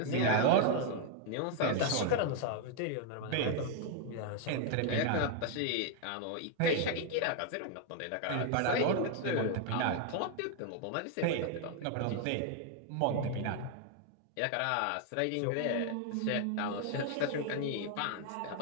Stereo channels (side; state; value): both; different; correlation 0.00